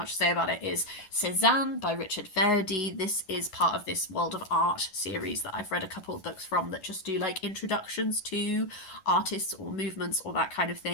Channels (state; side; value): late; right; 11 ms